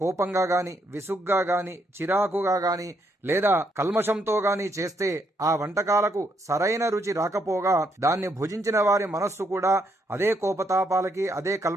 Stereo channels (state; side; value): normal; both; correlation 0.75